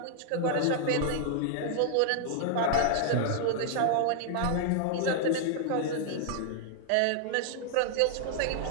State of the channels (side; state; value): both; different; correlation -0.01